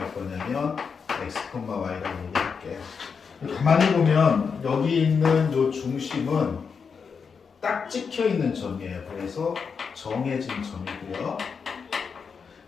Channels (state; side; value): quieter; right; 5.9 dB